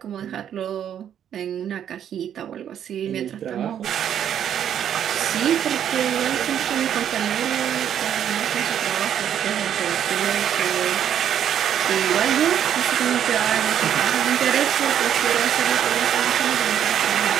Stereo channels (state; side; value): quieter; left; 9.6 dB